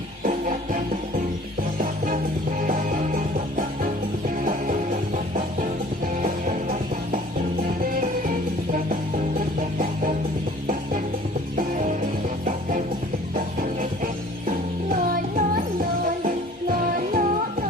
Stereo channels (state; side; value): normal; both; correlation 0.50